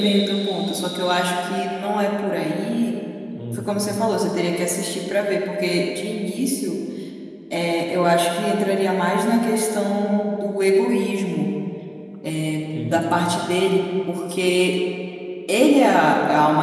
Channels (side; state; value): both; identical; correlation 1.00